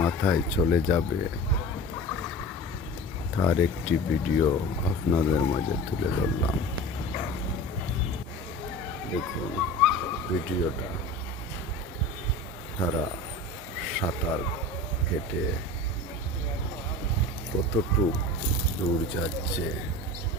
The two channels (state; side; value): normal; both; correlation 0.35